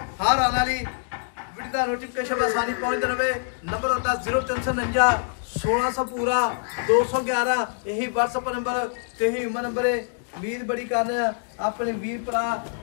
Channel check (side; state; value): right; silent; digital silence